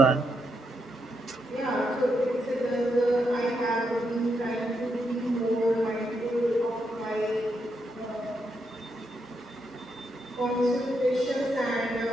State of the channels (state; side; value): normal; both; correlation 0.81